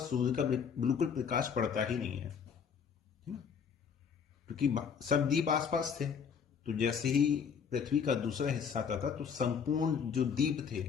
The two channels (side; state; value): right; quieter; 6.7 dB